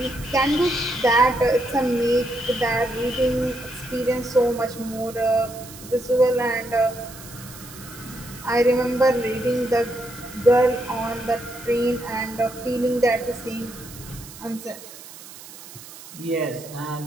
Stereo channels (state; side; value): noise; right; hiss, 16 dB below the sound